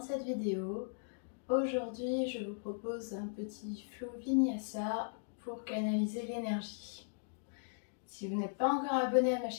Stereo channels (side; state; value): right; silent; digital silence